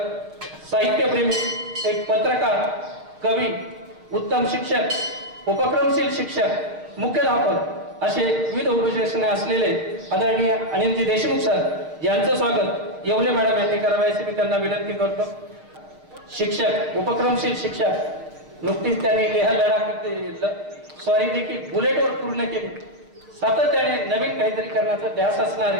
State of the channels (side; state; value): left; late; 6.5 ms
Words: साहित्यप्रेमी, एक पत्रकार, कवी, उत्तम शिक्षक, उपक्रमशील शिक्षक, मुख्याध्यापक असे विविध उपविशेषणे असलेले आदरणीय अनिलजी देशमुख सर यांचं स्वागत येवले मॅडम यांनी करावे अशी मी त्यांना विनंती करतो. शिक्षक, उपक्रमशील शिक्षक, नुकतीच त्यांनी लेह लडाख स्वारी देखील बुलेटवर पूर्ण केली. सातत्याने नवीन काहीतरी करण्याचा ध्यास असणारे